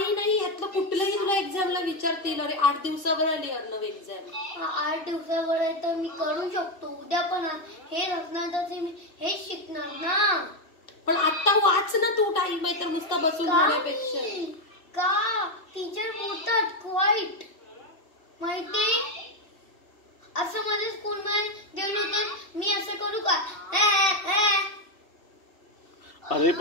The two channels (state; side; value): late; right; 2.7 ms